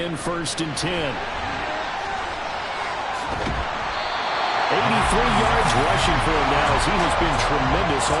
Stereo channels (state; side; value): identical; both; correlation 1.00